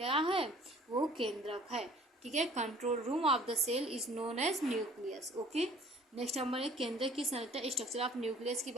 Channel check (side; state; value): both; normal; correlation 0.53